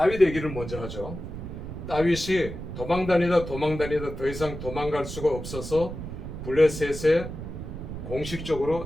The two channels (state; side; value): noise; right; rumble, 8 dB below the sound